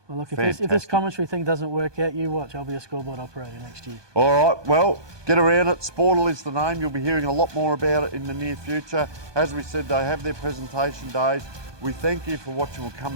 well, look, if this Fantastic. commentary thing doesn't work out, you watch. I'll be a scoreboard operator next year. All right, well, get around it. Sportal is the name. You'll be hearing a lot more about it in the near future. As we said, they have their presentation days. We thank you for watching. We'll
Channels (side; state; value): left; late; 1.2 ms